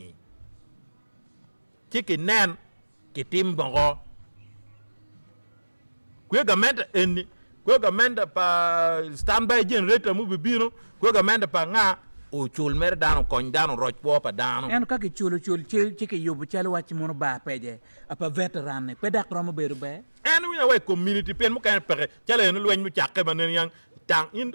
chiki nen kitim bongo kwe gamento eni kwe gamento pa standby generator mu bibino kwe gamento pa nga o chul mer dano kon dano roj po pa dano en ka ki chulu chiki yobu chalo wachi mono ba peje apa veteran ne pedak romo beru be en wi we community pen mu kan pere chale no lwen mu chakke banen yang tang in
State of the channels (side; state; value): both; inverted; correlation -1.00